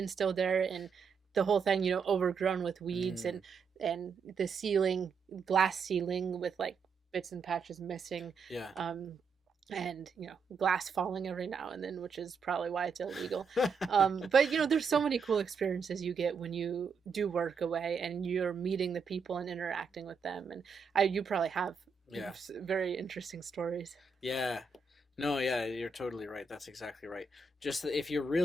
still there, and the whole thing overgrown with weeds, Mm. and the ceiling, glass ceiling with like bits and patches missing, Yeah. um and glass falling every now and then, which is probably why it's illegal. But there's so many cool experiences you get when you do work away, and you're meeting the people and interacting with them. And you probably have Yeah. very interesting stories. Yeah. No, yeah, you're totally right. That's exactly right. Just that if you're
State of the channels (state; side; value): quieter; left; 5.0 dB